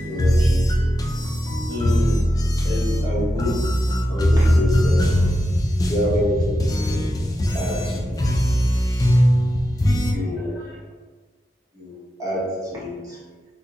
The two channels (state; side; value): normal; both; correlation 0.90